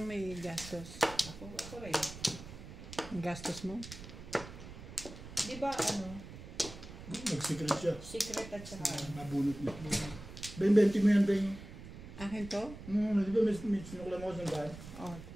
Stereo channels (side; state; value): right; noise; rumble, 13 dB below the sound